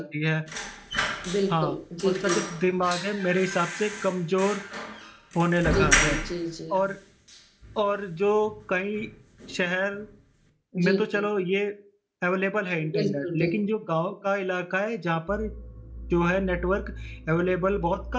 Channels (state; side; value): identical; both; correlation 1.00